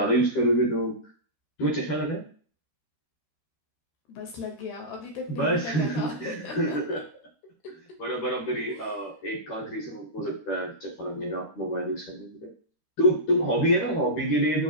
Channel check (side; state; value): right; late; 13 ms